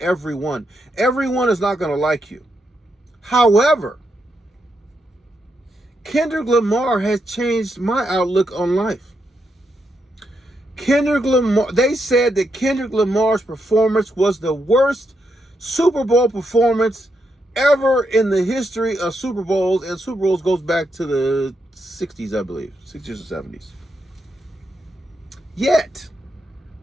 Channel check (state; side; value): normal; both; correlation 0.81